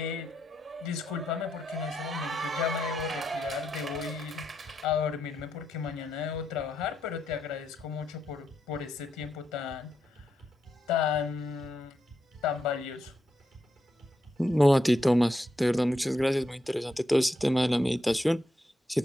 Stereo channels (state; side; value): normal; both; correlation 0.82